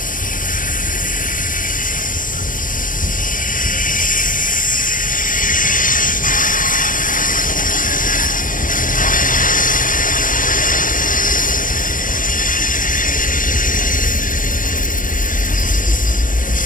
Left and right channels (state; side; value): late; right; 0.38 ms